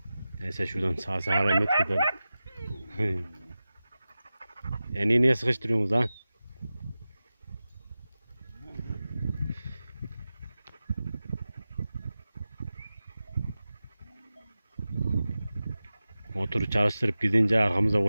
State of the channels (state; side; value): inverted; both; correlation -0.95